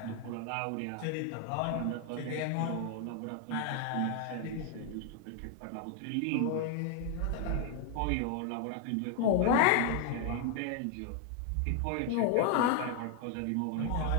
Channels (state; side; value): different; both; correlation 0.00